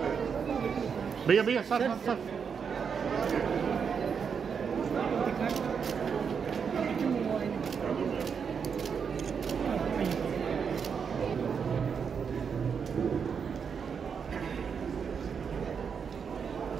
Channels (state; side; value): quieter; left; 6.5 dB